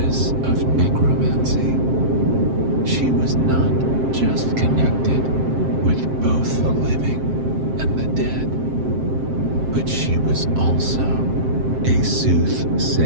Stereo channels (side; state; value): left; late; 7.6 ms